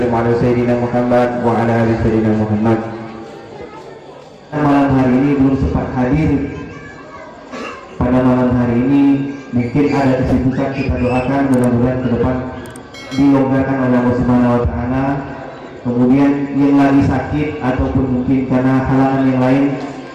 ala sayyidina Muhammad wa ala ali sayyidina Muhammad. Malam hari ini belum sempat hadir. Pada malam hari ini mungkin ada kesibukan, kita doakan mudah-mudahan ke depan dilonggarkan oleh Allah Subhanahu wa taala. Kemudian yang lagi sakit ataupun mungkin karena halangan yang lain,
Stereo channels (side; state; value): both; identical; correlation 1.00